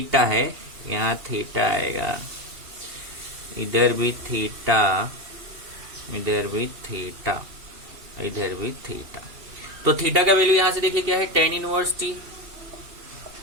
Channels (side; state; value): left; late; 2.9 ms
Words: है, यहाँ थीटा आएगा, इधर भी थीटा, इधर भी थीटा, इधर भी थीटा। तो थीटा का वैल्यू यहां से देखिए क्या है, tan inverse t,